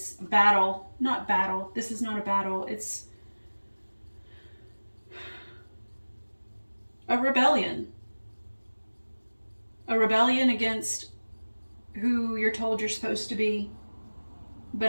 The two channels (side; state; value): both; inverted; correlation -1.00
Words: battle. Not battle. This is not a battle. It's a rebellion. A rebellion against who you're told you're supposed to be.